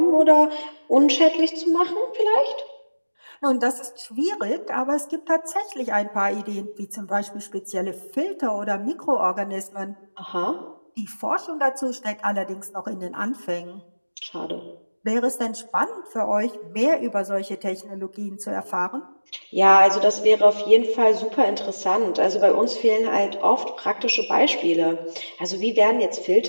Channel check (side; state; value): both; inverted; correlation -1.00